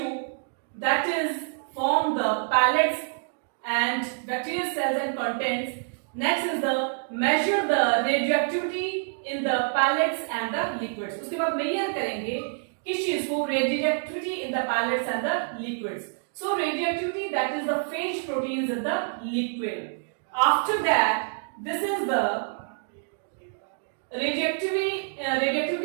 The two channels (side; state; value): left; silent; digital silence